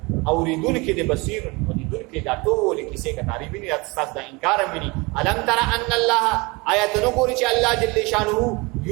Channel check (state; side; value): quieter; left; 26.1 dB